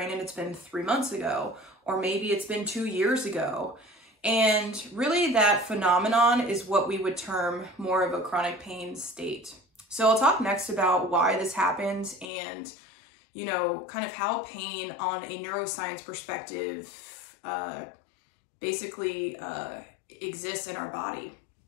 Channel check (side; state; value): right; drops out; at 12.3 s